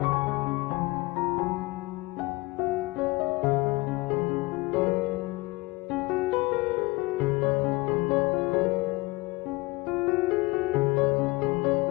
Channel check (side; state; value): right; quieter; 22.8 dB